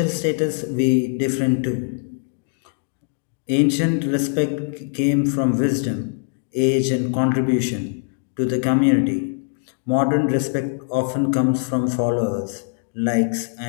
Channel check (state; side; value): silent; right; 59 dB below the other